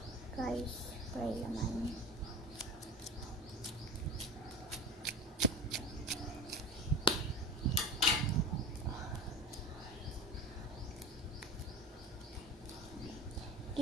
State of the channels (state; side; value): normal; both; correlation 0.34